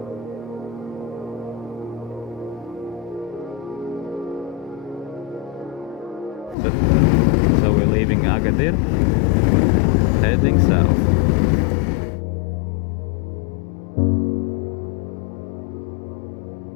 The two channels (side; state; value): right; drops out; at 6.6 s